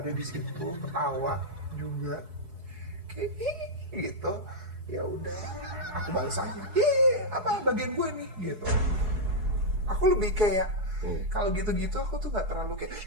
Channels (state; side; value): late; left; 4.7 ms